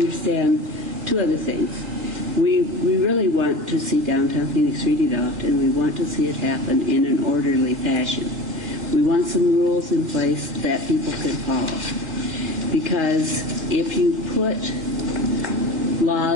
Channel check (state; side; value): late; left; 3.8 ms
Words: two other things. We really want to see downtown Phoenix redeveloped, and we want to see it happen in an orderly fashion. We want some rules in place that people can follow. Because if you put